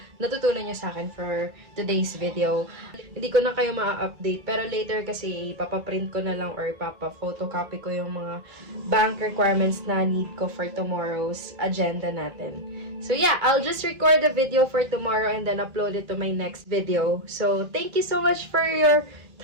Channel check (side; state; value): left; late; 2.3 ms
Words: natutunan nyo sa akin for today's video. Hindi ko na kayo ma-update pero later kasi ipapaprint ko na lang or ipapa-photocopy ko yung mga bank requirements na need ko for tomorrow's agenda natin. So yeah, I'll just record the video for tomorrow and then upload it to my next video. So thank you so much for your